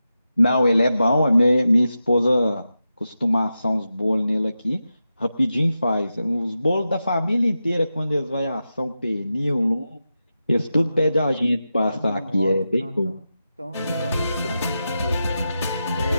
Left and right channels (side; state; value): both; inverted; correlation -0.90